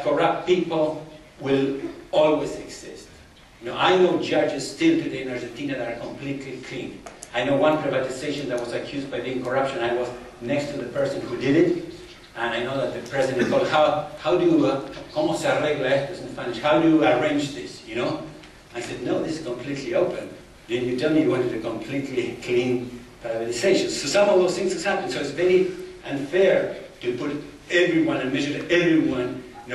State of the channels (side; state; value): both; identical; correlation 1.00